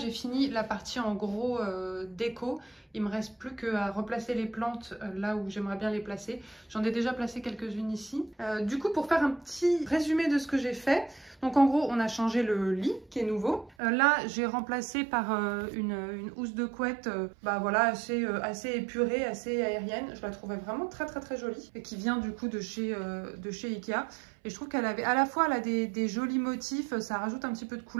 fini la partie en gros déco. Il me reste plus qu'à replacer les plantes là où j'aimerais bien les placer. J'en ai déjà placé quelques-unes ici. Du coup, pour faire un petit résumé de ce que j'ai fait, donc en gros on a changé le lit qui est nouveau. Là j'ai remplacé par une housse de couette bah voilà, assez épurée, assez aérienne. Je la trouvais vraiment très jolie et qui vient du coup de chez Ikea. Et je trouve qu'elle avait à la fois elle a des jolis motifs, ça rajoute un petit peu de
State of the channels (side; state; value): left; drops out; at 13.8 s